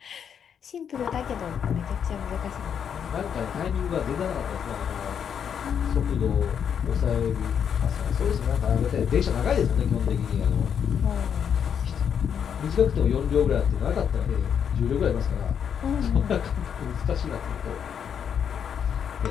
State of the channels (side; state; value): right; quieter; 7.9 dB